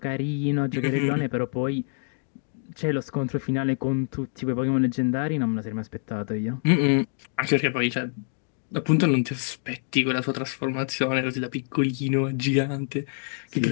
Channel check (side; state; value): right; silent; 61 dB below the other